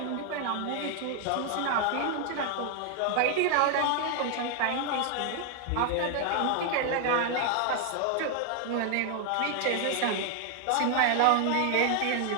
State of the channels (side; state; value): both; different; correlation 0.00